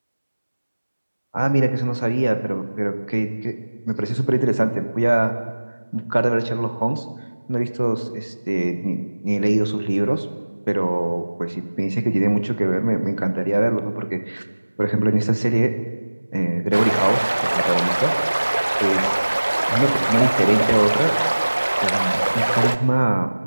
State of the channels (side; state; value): both; inverted; correlation -1.00